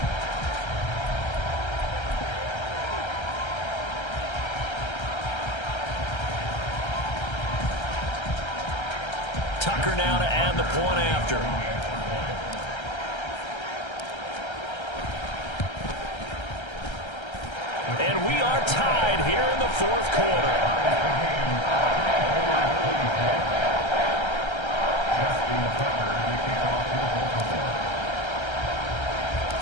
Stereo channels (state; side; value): late; right; 1.3 ms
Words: Tucker now to add the point after. And we are tied here in the 4th quarter.